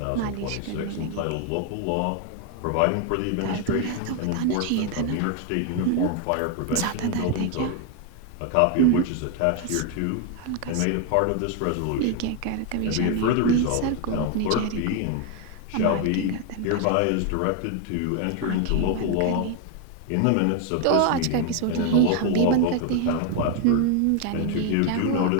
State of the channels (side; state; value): both; different; correlation 0.01